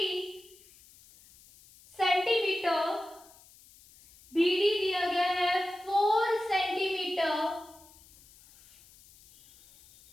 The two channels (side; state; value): left; noise; hiss, 25 dB below the sound